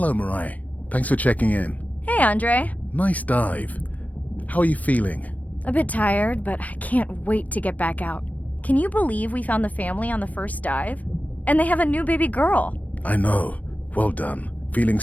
Mirai. Thanks for checking in. Hey, Andre. Nice dive. How are you feeling? A bit tired, but I can't wait to get back out. Can you believe we found the family on the first dive? And they have a new baby girl. I know. Well done. Feeling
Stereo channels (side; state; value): right; late; 0.072 ms